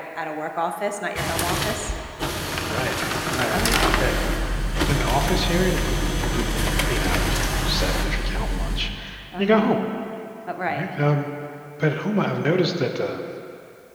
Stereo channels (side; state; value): both; identical; correlation 1.00